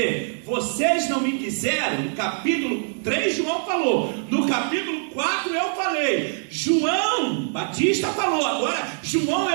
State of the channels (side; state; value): left; silent; 56 dB below the other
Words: vocês não me quiseram. No capítulo 3 João falou, no capítulo 4 eu falei, João Batista falou, agora João